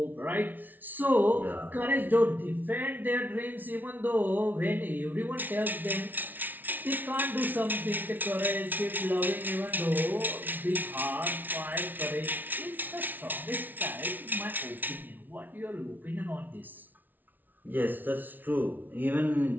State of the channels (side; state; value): left; late; 0.084 ms